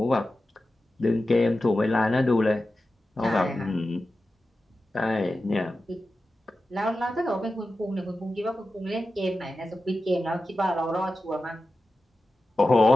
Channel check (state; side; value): normal; both; correlation 0.93